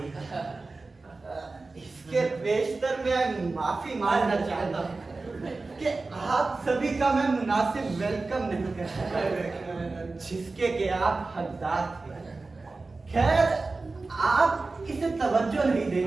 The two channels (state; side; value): quieter; left; 3.6 dB